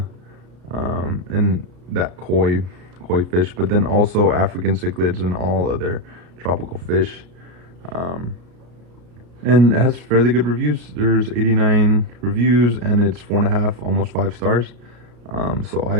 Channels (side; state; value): left; late; 33 ms